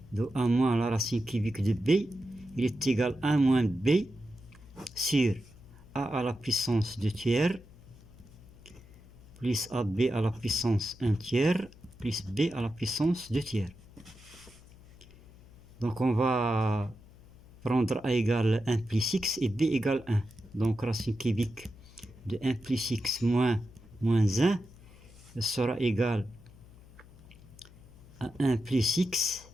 de 1 moins la racine cubique de b, il est égal à 1 moins b sur a à la puissance 2 tiers plus ab à la puissance 1 tiers plus b à la puissance 2 tiers. Donc on va prendre a égale 1 plus x et b égale 1. Donc racine cubique de 1 plus x moins 1 sera égal à 1 plus x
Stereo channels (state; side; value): noise; left; hum, 22 dB below the sound